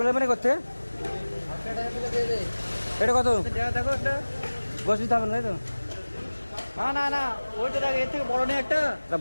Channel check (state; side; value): inverted; both; correlation -1.00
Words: নেবেন করতে। এটা কত? গোস দিতে হবে না, তাই তো? না না ওইটা দেখ, এর থেকে বড় নেই একটা।